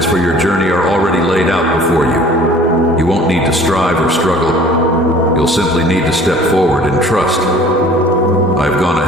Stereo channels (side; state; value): both; normal; correlation 0.49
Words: for your journey are already laid out before you. You won't need to strive or struggle. You'll simply need to step forward and trust. I've gone